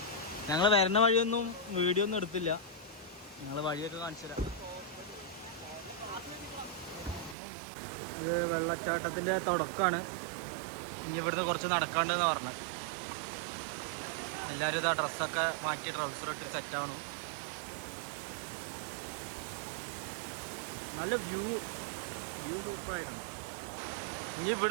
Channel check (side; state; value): left; drops out; at 7.4 s